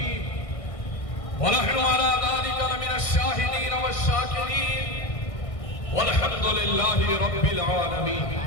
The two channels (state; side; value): late; right; 1.6 ms